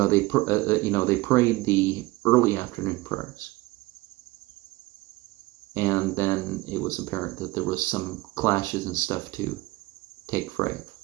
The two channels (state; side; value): quieter; left; 20.7 dB